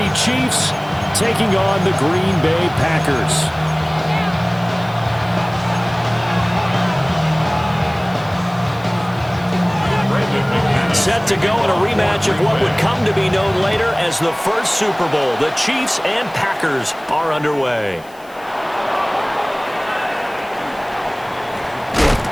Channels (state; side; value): noise; left; hiss, 26 dB below the sound